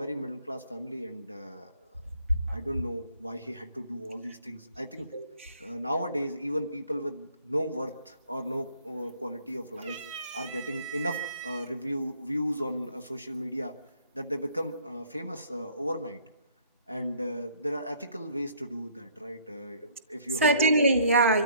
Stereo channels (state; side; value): inverted; both; correlation -0.61